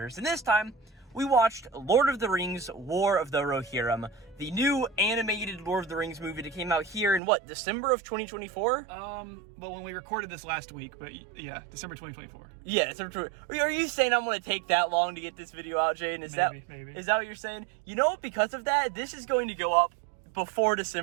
and this time we watched Lord of the Rings: War of the Rohirrim, the new animated Lord of the Rings movie that came out here in what, December of 2024? Well, when we recorded this last week, but yeah, December 2024. Yeah, December. Are you saying I'm going to take that long to get this video out, Jaden? Maybe. Is that what you're saying? You know, because of that, this is going to go up before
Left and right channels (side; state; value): left; drops out; at 7.2 s